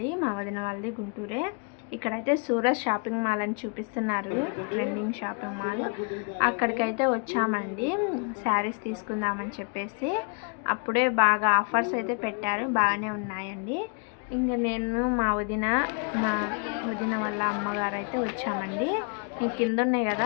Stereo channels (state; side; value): quieter; right; 37.4 dB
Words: మా వదిన వాళ్ళది గుంటూరే. ఇక్కడైతే సూరత్ షాపింగ్ మాల్ అని చూపిస్తున్నారు, ట్రెండింగ్ షాపింగ్ మాల్. అక్కడికైతే వచ్చామండి శారీస్ తీసుకుందామని చెప్పేసి. అప్పుడే బాగా ఆఫర్స్ అయితే పెట్టారు, బాగానే ఉన్నాయండి. ఇంకా నేను మా వదిన వాళ్ళ అమ్మగారు అయితే వచ్చామండి. కింద ఉన్నాయి కదా